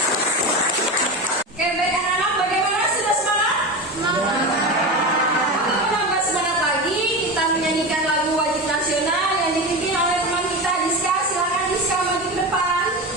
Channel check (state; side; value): normal; both; correlation 0.23